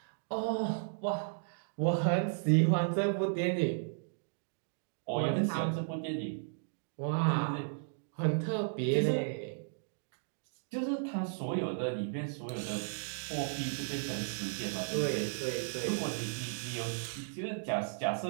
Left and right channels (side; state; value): left; silent; digital silence